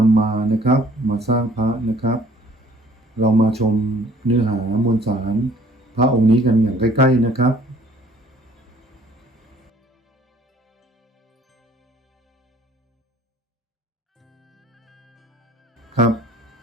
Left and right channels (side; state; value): both; normal; correlation 0.56